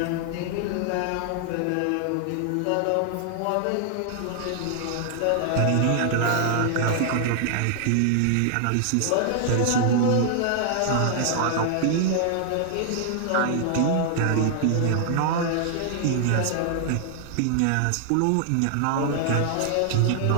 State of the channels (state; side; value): different; both; correlation 0.00